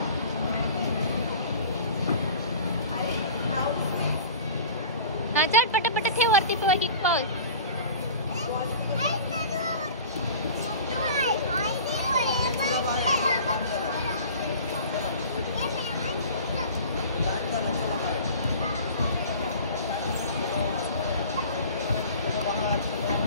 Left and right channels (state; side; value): inverted; both; correlation -0.41